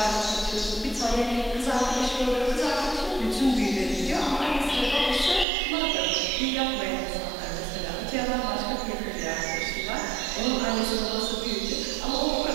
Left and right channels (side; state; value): left; drops out; at 5.5 s